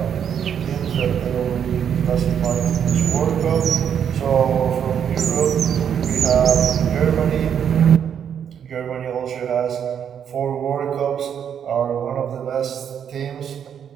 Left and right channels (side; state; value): left; quieter; 8.4 dB